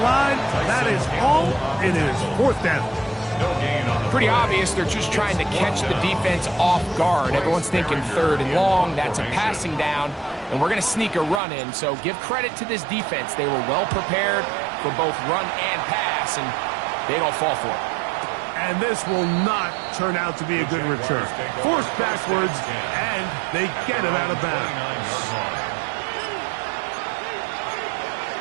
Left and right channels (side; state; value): left; drops out; at 11.4 s